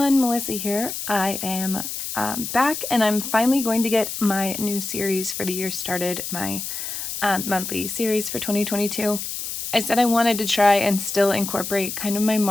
Melissa here. I am back and I'm finally going to get my new series for the year started, my monthly series for 2022. I said I wanted to try and still incorporate kind of my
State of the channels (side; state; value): left; noise; hiss, 6 dB below the sound